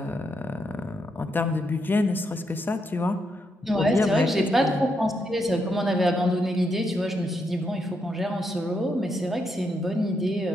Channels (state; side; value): normal; both; correlation 0.80